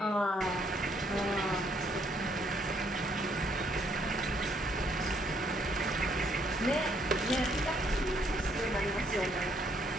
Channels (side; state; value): both; normal; correlation 0.69